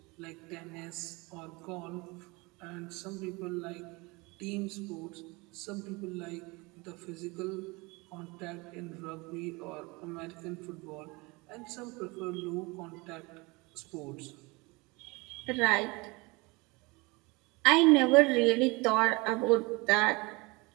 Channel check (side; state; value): left; quieter; 25.5 dB